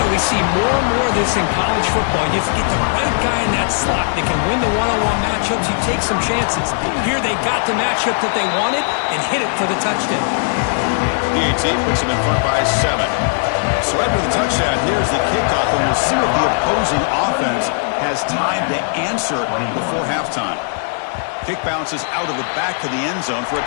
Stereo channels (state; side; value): silent; right; digital silence